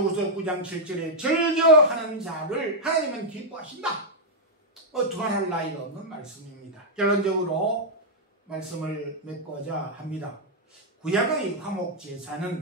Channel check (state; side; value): normal; both; correlation -0.04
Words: 9장 7절에 즐겨하는 자를 하나님은 기뻐하신다. 두말할 나위가 없는 말씀입니다. 결론적으로 말씀을 맺고자 합니다. 구약의